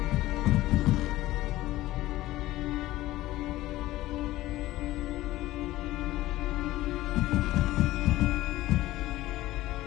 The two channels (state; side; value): quieter; right; 16.5 dB